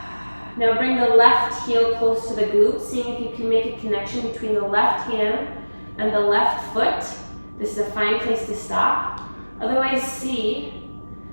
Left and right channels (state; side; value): inverted; both; correlation -1.00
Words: Now bring the left heel close to the glute, seeing if you can make a connection between the left hand and the left foot. This is a fine place to stop. Otherwise, see